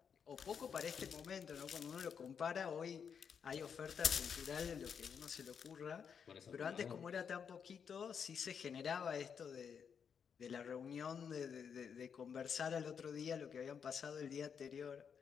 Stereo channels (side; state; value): right; quieter; 7.0 dB